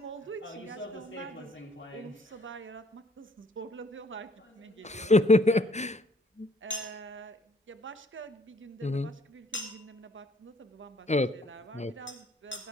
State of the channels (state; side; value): normal; both; correlation 0.61